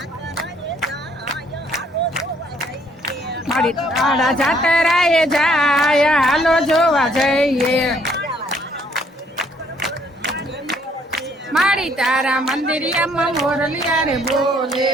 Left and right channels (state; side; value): normal; both; correlation 0.65